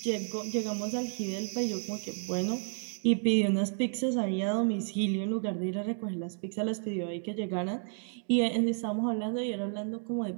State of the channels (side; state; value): left; silent; 57 dB below the other